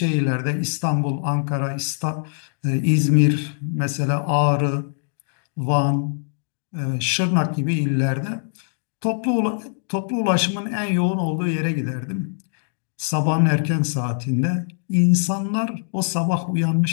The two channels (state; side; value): silent; right; digital silence